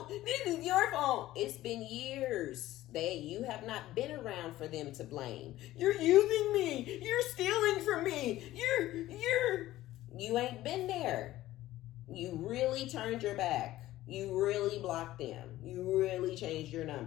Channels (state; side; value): quieter; right; 15.4 dB